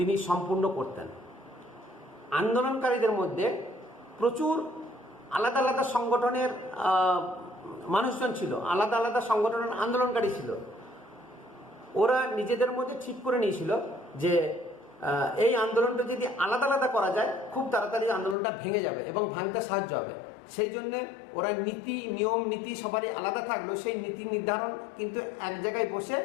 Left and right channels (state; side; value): drops out; right; at 18.4 s